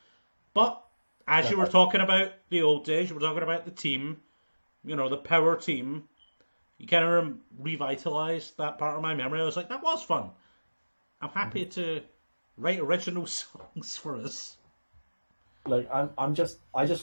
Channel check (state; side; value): inverted; both; correlation -1.00